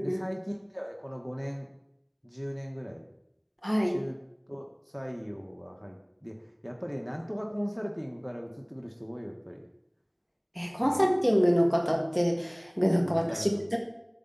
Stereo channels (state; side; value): identical; both; correlation 1.00